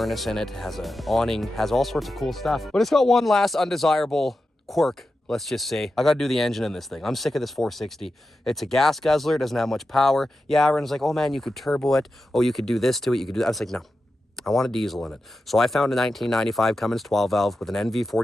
in it, has an awning, has all sorts of cool stuff. But it's got one last undesirable quirk, let's just say. I gotta do the engine in this thing. I'm sick of this 460. It's a gas guzzler, it doesn't have much power. Yeah, everyone's like, oh man, you could turbo it. Oh, you could do this to it, you could do that. I was like, no, I want a diesel in it. So I found a 1995 Cummins 12 valve with an NV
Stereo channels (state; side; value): normal; both; correlation 0.91